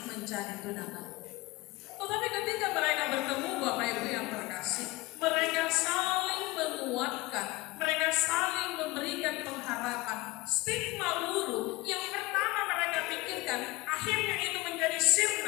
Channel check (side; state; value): right; quieter; 21.0 dB